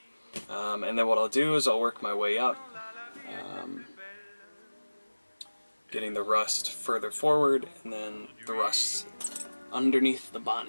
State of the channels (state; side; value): inverted; both; correlation -1.00